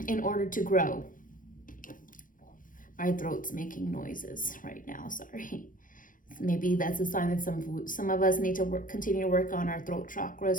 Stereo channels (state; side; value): late; right; 0.39 ms